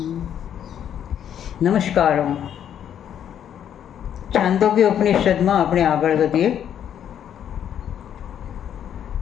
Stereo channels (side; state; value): right; quieter; 9.5 dB